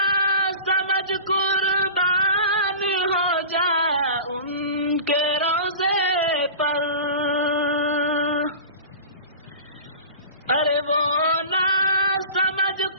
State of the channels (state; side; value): inverted; both; correlation -0.35